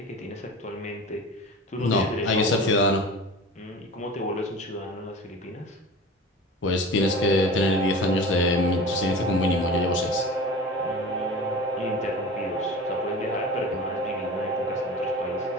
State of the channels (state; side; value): normal; both; correlation 0.36